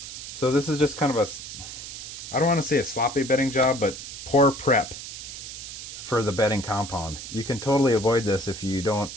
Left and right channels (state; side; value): noise; right; hiss, 10 dB below the sound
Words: So this is just kind of a, I don't want to say a sloppy bedding job, but poor prep for the bedding compound. You can totally avoid this if you don't